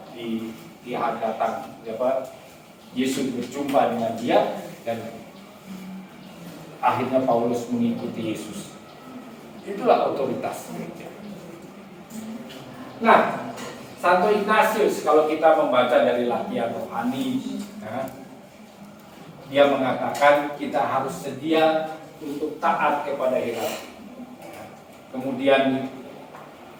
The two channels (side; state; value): both; identical; correlation 1.00